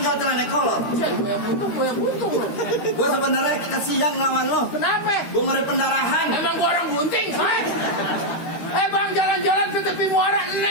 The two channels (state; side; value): late; right; 13 ms